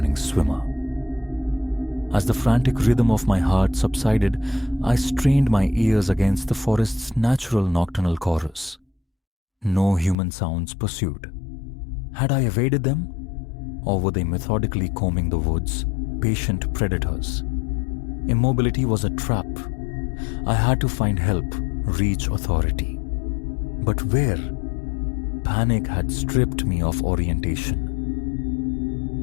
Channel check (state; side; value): drops out; right; at 10.2 s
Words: swimmer. As the frantic rhythm of my heart subsided, I strained my ears against the forest's natural nocturnal chorus. No human sounds pursued. Had I evaded them? Or were they methodically combing the woods, patient predators? Immobility was a trap. I had to find help, reach authority. But where? Panic had stripped me of orientation.